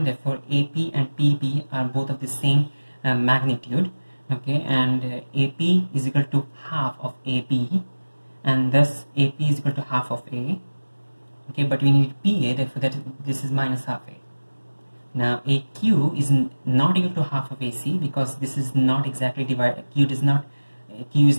therefore AP and PB are both of the same magnitude. Okay, and AP is equal to half of AB, and thus AP is equal to half of A. Okay, but we need PA, therefore this is minus half A. Now AQ is not equal to half of AC because this is not exactly divided. Q is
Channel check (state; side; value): inverted; both; correlation -1.00